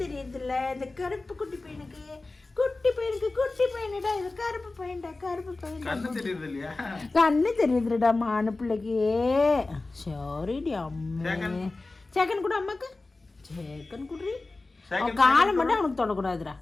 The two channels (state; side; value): quieter; right; 3.3 dB